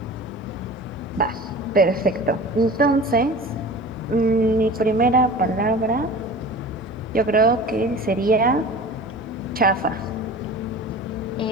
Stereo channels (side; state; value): both; normal; correlation 0.38